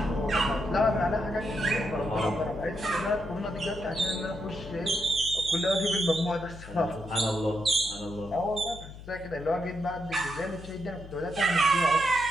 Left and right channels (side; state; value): left; noise; hum, 15 dB below the sound